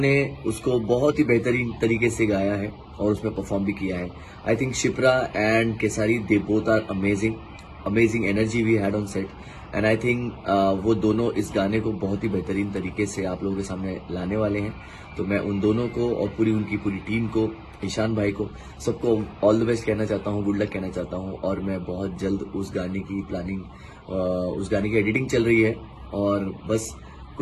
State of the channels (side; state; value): both; identical; correlation 1.00